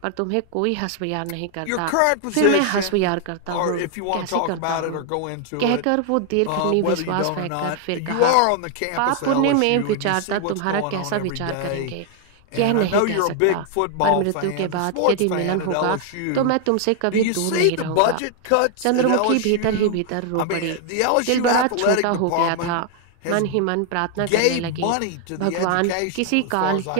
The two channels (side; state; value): both; different; correlation 0.00